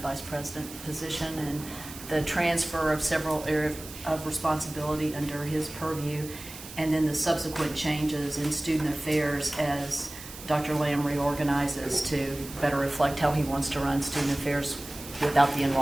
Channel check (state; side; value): noise; right; hiss, 14 dB below the sound